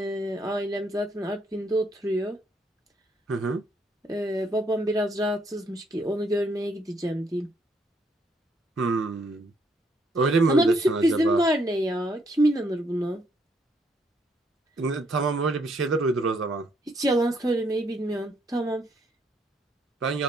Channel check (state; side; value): normal; both; correlation 0.71